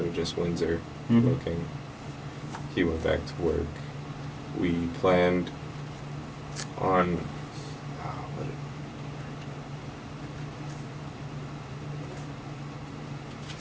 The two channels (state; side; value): identical; both; correlation 1.00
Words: of just Windsor Mhm. looking. He went back to work. We planned on